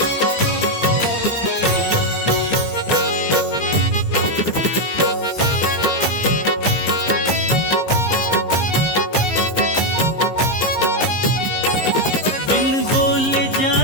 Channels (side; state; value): right; late; 15 ms